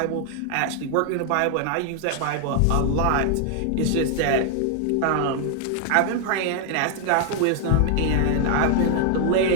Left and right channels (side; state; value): both; different; correlation 0.00